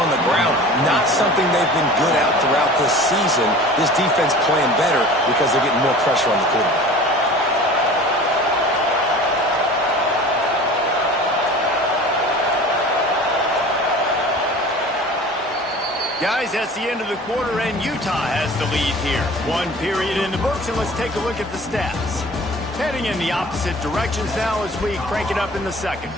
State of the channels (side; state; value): both; normal; correlation 0.41